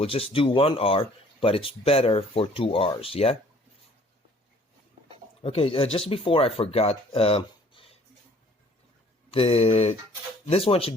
just do 1 hour, but it's better for 2 hours. Yeah. Okay. Just before I forgot, this one should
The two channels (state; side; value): normal; both; correlation 0.56